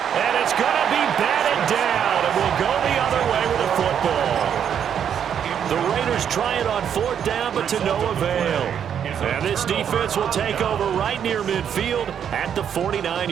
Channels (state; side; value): quieter; left; 8.5 dB